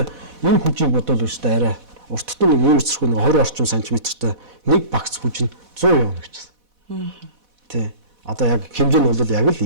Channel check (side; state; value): left; late; 4.1 ms